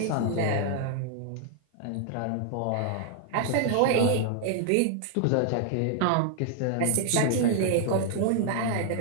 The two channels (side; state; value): both; different; correlation 0.00